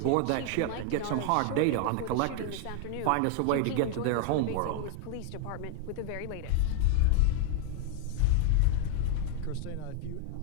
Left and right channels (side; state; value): both; different; correlation 0.00